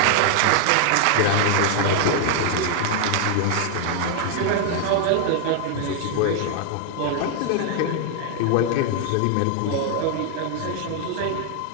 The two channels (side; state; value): both; different; correlation 0.00